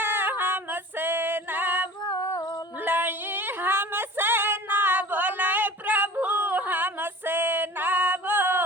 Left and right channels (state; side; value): normal; both; correlation 0.41